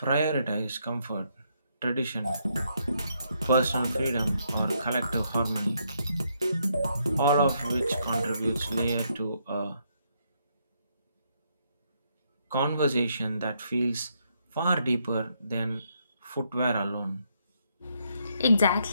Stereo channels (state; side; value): inverted; both; correlation -0.75